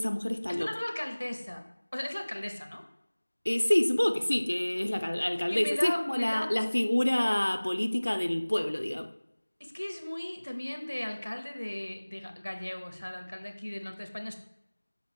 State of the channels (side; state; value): both; inverted; correlation -1.00